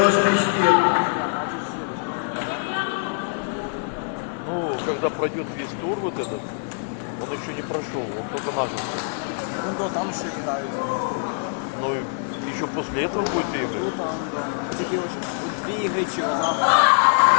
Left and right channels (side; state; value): right; silent; 62 dB below the other